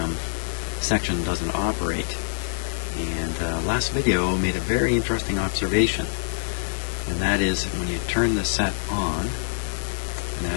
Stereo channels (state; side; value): silent; right; 62 dB below the other